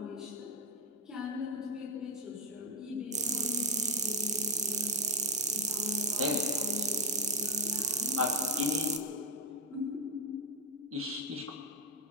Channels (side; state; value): both; normal; correlation 0.04